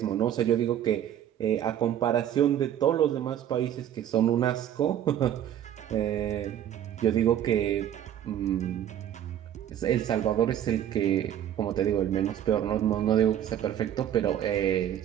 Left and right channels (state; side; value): quieter; left; 10.6 dB